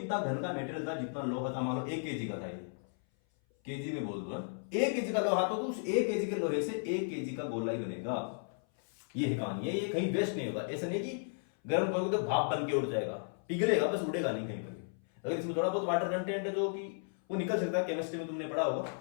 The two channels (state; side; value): silent; right; 55 dB below the other